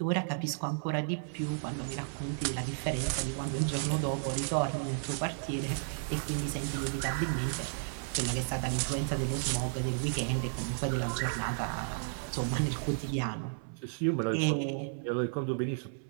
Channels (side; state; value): left; silent; 56 dB below the other